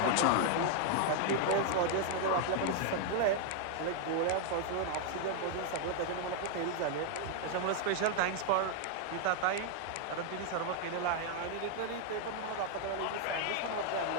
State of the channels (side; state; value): both; different; correlation 0.00